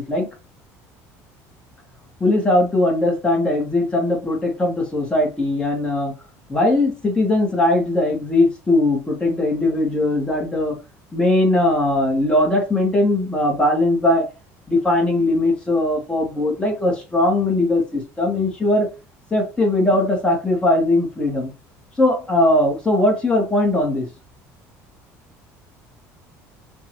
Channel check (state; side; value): normal; both; correlation 0.54